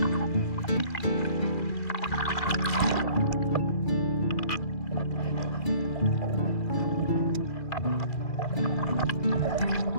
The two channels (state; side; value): late; right; 2.3 ms